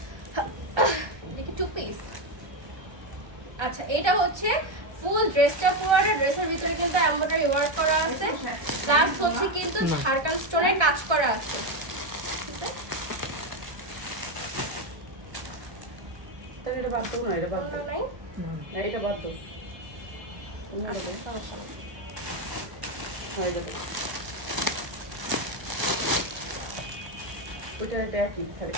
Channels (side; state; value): left; late; 1.2 ms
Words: দেখি 2 পিস। আচ্ছা এটা হচ্ছে ফুল ড্রেসটা, পুরোটা ড্রেসের ভিতরে কিন্তু এমব্রয়ডারি ওয়ার্ক করা আছে, প্লাস হচ্ছে কিন্তু ঝাড়খান্ড স্টোনের কাজ করা আছে। ঠিক আছে, এটা বাদ দাও না, এটা বাদ দাও। নাই এটা বাদ দাও। আচ্ছা সমস্যা নেই। ওইটা এটা একই, খালি